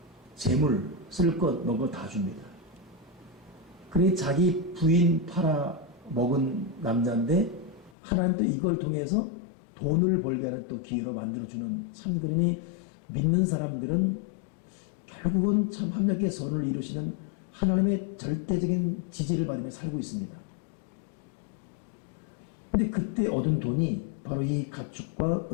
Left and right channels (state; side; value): drops out; right; at 8.0 s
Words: 재물, 쓸 것, 먹을 것 다 줍니다. 그래 자기 부인 팔아 먹은 남자인데 하나님도 이걸 통해서 돈을 벌게 하는 또 기회로 만들어주는, 참 그러니 믿는 사람들은 결국은 참 합력의 선을 이루시는 하나님의 절대적인 지지를 받으며 살고 있습니다. 근데 그때 얻은 돈이 바로 이 가축과